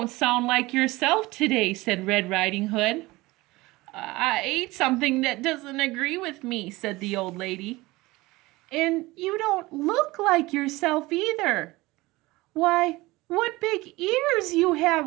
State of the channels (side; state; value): left; quieter; 20.6 dB